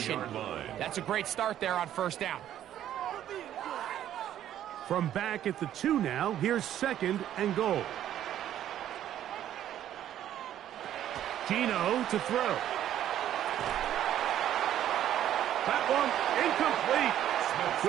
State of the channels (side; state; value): left; quieter; 11.4 dB